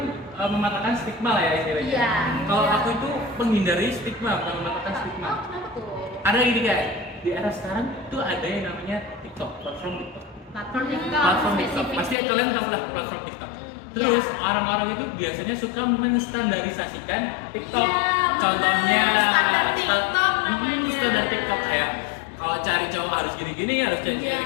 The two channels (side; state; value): right; drops out; at 12.2 s